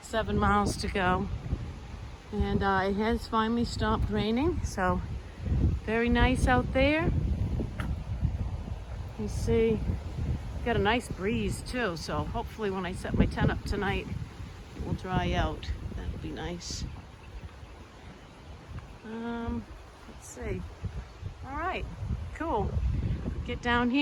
7 miles to go. And it has finally stopped raining, so very nice out there. You see, got a nice breeze too, so hopefully when I set my tent up tonight, it will dry out. That'll be nice. Let's see. All right, cool. Get down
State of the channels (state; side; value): identical; both; correlation 1.00